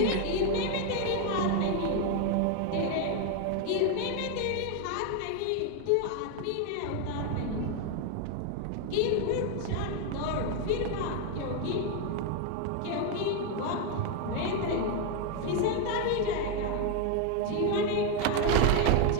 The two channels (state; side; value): different; both; correlation 0.01